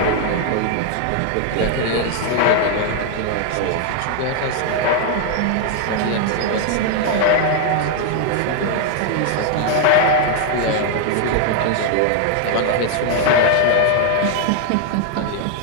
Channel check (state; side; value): different; both; correlation 0.00